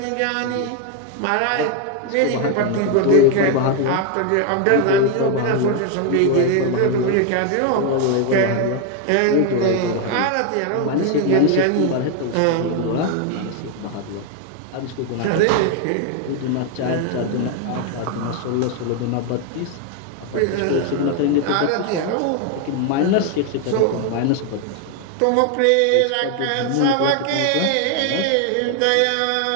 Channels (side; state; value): both; different; correlation 0.01